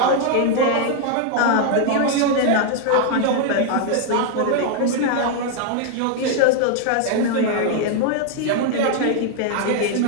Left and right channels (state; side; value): different; both; correlation 0.00